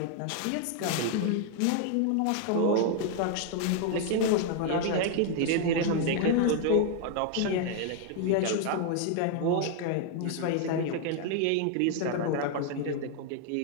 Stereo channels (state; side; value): different; both; correlation 0.00